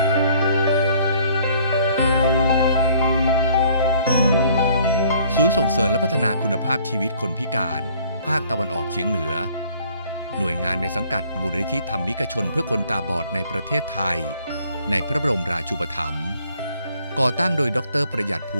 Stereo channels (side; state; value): both; inverted; correlation -0.59